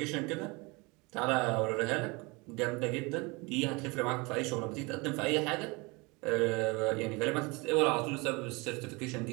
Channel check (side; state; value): left; quieter; 26.7 dB